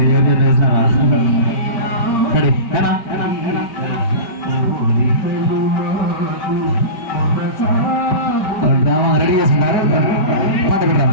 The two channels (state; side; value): late; right; 4.9 ms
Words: ఎవరు చెప్పేస్తారా? రెడీ ఏనా? డ్రామా రెడీ చేసుకుంటారు, పాట పెట్టరా.